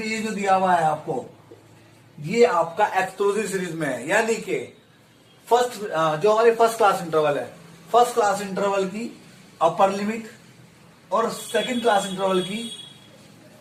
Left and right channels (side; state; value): both; identical; correlation 1.00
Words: ये जो दिया हुआ है आपको, ये आपका एक्सक्लूसिव सीरीज में है। यानी कि फर्स्ट जो हमारी फर्स्ट क्लास इंटरवल है, फर्स्ट क्लास इंटरवल की अपर लिमिट और सेकंड क्लास इंटरवल की